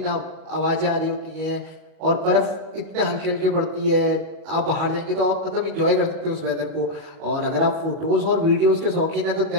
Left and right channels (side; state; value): left; late; 38 ms